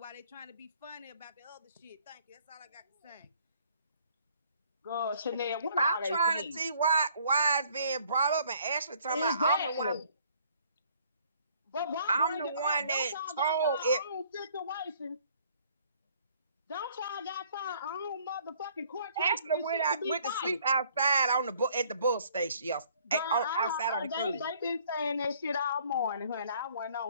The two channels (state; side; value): inverted; both; correlation -0.60